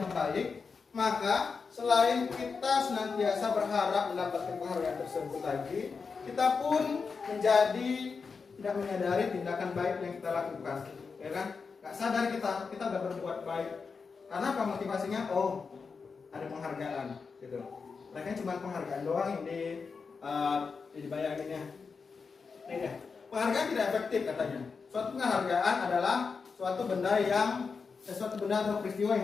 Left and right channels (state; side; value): quieter; right; 5.1 dB